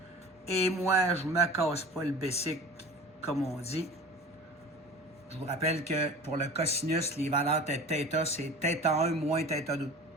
Et moi, je ne me casse pas le basic, comme on dit. Je vous rappelle que pour le cosinus, les valeurs de θ, c'est θ1 moins θ2.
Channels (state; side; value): normal; both; correlation 0.39